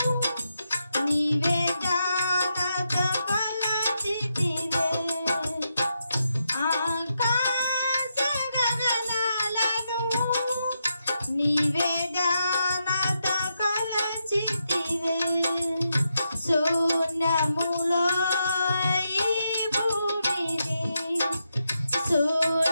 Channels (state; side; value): inverted; both; correlation -0.84